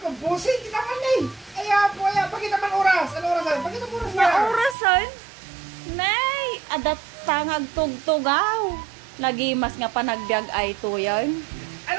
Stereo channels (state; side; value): drops out; left; at 4.8 s